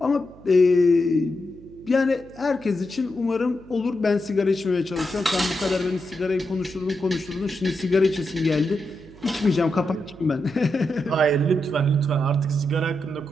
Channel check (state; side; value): noise; right; hum, 23 dB below the sound